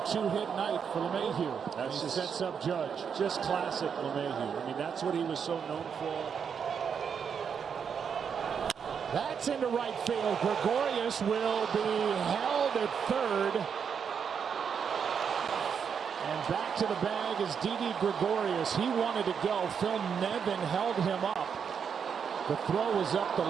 night for LeMahieu. That's just sets up Judge. Just classic LeMahieu. I mean, that's what he was so known for. That's into right field. Gregorius will be held at third. And back to the bag is Didi Gregorius. He wanted to go. Phil Nevin held him up. The throw was up the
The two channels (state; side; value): quieter; left; 7.0 dB